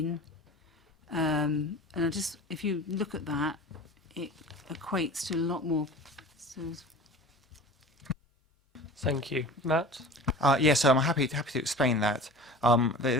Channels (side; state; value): both; normal; correlation 0.38